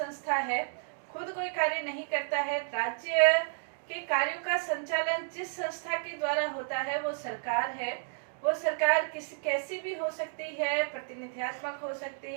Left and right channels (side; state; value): left; silent; digital silence